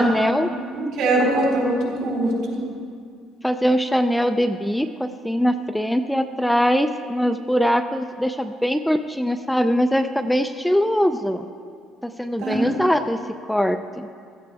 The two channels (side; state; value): both; normal; correlation 0.88